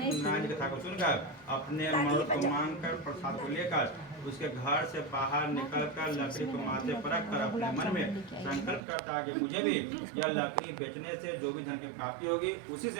जी की कथा को सुनकर अपने मर्द को मांगकर प्रसाद को लेकर उसके घर से बाहर निकलकर लकड़ी को माथे पर रखकर अपने मन में संकल्प करता है कि मुझे भी यह लकड़ी बेचने से जो भी धन की प्राप्ति होगी, उसी से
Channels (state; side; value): drops out; left; at 8.8 s